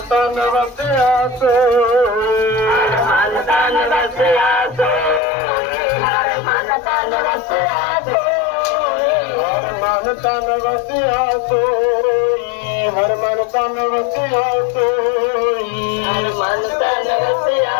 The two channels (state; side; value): drops out; right; at 5.2 s